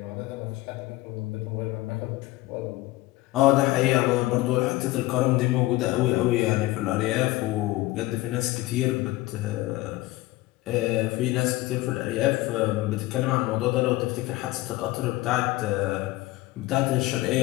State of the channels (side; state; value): right; quieter; 18.4 dB